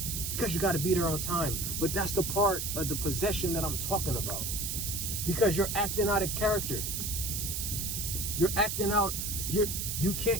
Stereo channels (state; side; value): noise; right; hiss, 2 dB below the sound